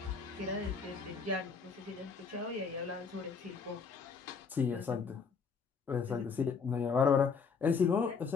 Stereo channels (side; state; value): right; quieter; 5.5 dB